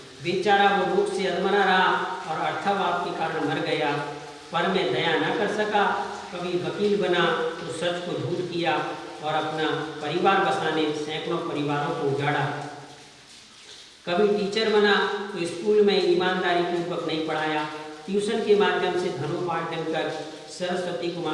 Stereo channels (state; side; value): identical; both; correlation 1.00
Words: बेचारा वो रोग से अधमरा रहा और अर्थाभाव के कारण मर गया, पर मैं दया न कर सका। कभी वकील बना तो सच को झूठ किया और अपना परिवार बसाने सैकड़ों परिवारों को उजाड़ा। कभी टीचर बना तो स्कूल में ईमानदारी पूर्वक नहीं पढ़ाया, ट्यूशन के माध्यम से धनोपार्जन कर सरस्वती को